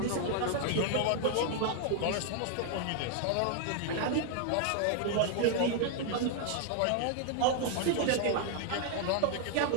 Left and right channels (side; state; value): both; different; correlation 0.00